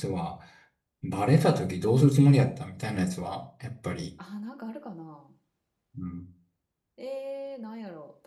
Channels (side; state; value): both; identical; correlation 1.00